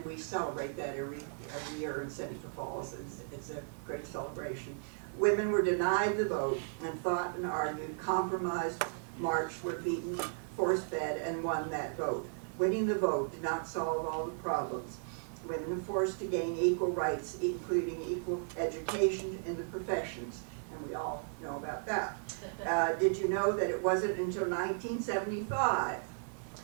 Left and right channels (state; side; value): silent; left; digital silence